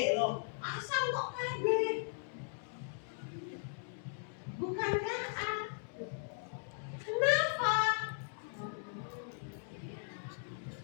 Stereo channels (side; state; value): right; silent; digital silence